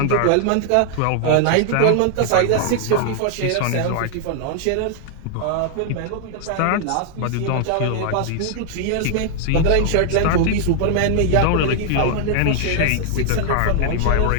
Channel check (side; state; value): both; different; correlation 0.00